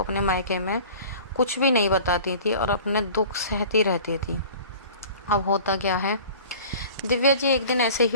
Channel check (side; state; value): both; inverted; correlation -0.43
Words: मायके में कुछ भी नहीं बताती थी और अपने दुख सहती रहती थी। अब होता क्या है, दिव्या जी एक दिन ऐसे